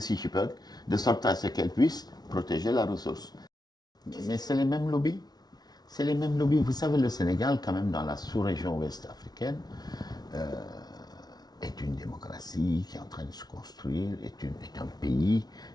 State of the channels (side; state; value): right; late; 0.19 ms